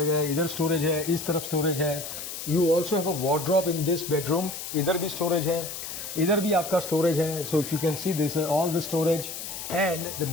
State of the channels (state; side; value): noise; left; hiss, 8 dB below the sound